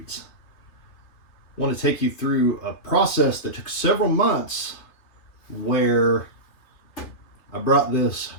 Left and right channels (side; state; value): right; late; 3.3 ms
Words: I want to take you through a process that took several months where I brought this